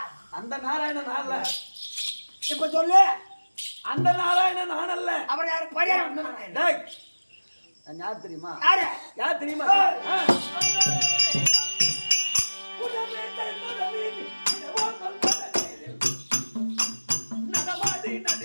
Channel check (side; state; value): both; inverted; correlation -1.00